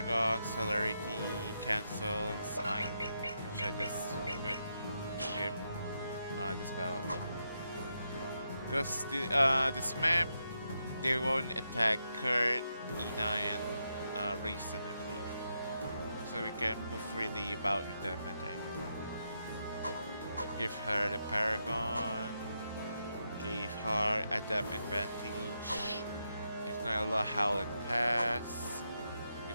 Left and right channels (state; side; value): inverted; both; correlation -0.83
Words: Celerity, Cancel, and Smite, which I just put him this battle. Because this map, they won't attack Kurt, Ina, and Raisin, I believe. So we can move freely about with them, I think. Give her the Paragon. Give her Adapt Advantage. Give Nyla Howl and Pass.